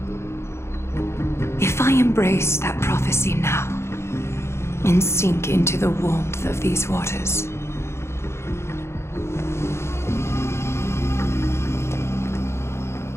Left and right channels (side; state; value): right; late; 0.13 ms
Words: If I embrace that prophecy now and sink into the warmth of these waters,